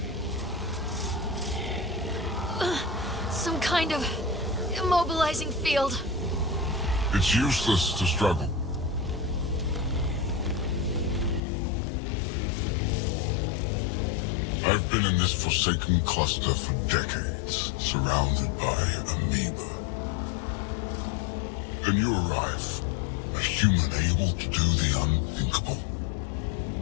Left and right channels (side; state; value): right; drops out; at 11.4 s